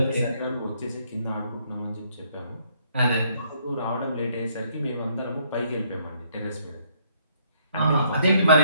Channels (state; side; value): inverted; both; correlation -0.68